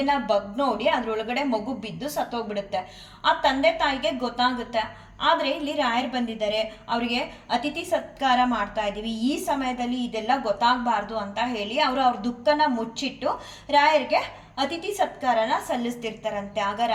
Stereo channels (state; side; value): identical; both; correlation 1.00